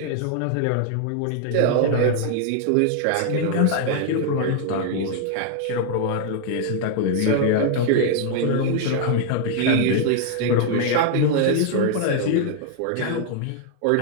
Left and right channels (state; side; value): different; both; correlation 0.00